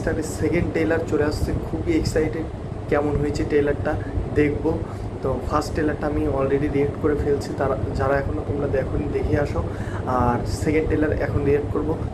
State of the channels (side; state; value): both; identical; correlation 1.00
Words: সেকেন্ড ট্রেলার চলে আসছে, খুবই এক্সাইটেড। কেমন হয়েছে ট্রেলারটা দেখবো। তো ফার্স্ট ট্রেলারটা আমি অলরেডি রিয়েক্ট করে ফেলছি, তারা যারা এখনও তোমরা দেখোনি দেখে আসো। আর সেকেন্ড ট্রেলার এখন রিয়েক্ট করবো।